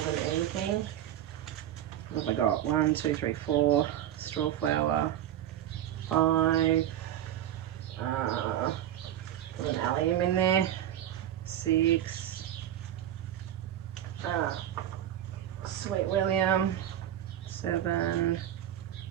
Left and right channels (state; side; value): quieter; left; 11.5 dB